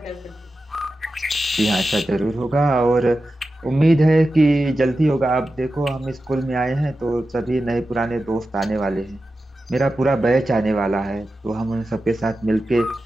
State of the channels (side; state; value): both; normal; correlation 0.92